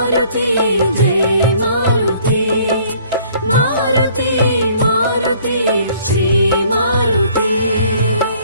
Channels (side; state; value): both; inverted; correlation -0.58